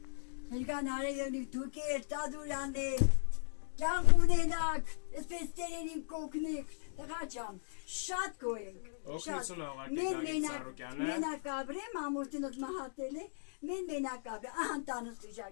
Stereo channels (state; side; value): silent; right; digital silence